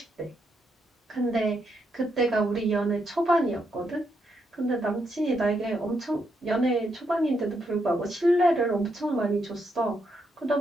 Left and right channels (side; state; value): both; normal; correlation 0.79